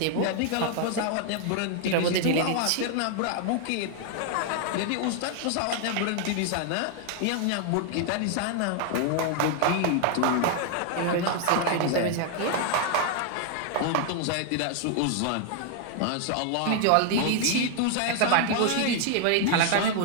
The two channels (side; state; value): both; different; correlation 0.00